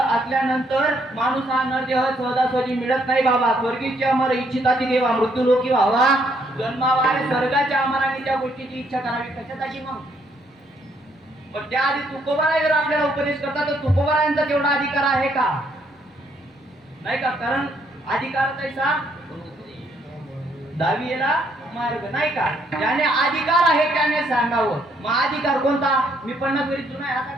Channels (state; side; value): normal; both; correlation 0.70